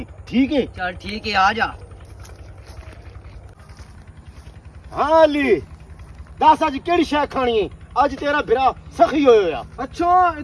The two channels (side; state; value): both; identical; correlation 1.00